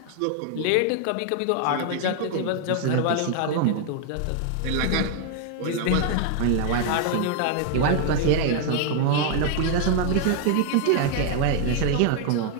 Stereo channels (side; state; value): both; different; correlation 0.01